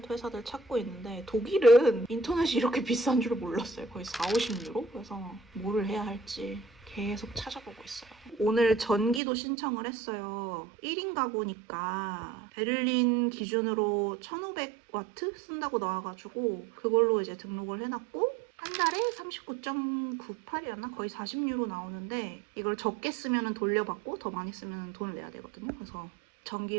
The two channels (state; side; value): drops out; left; at 9.2 s